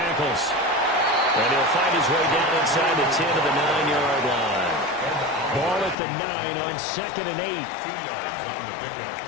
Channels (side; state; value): right; drops out; at 6.0 s